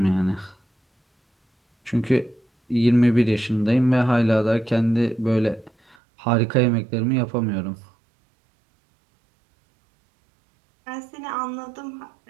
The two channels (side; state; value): left; drops out; at 6.0 s